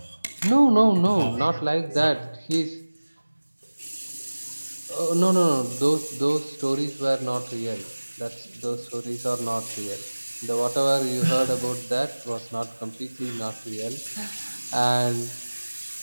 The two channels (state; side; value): inverted; both; correlation -1.00